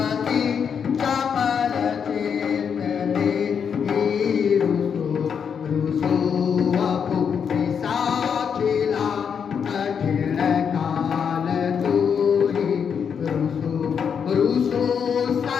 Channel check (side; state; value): right; quieter; 7.1 dB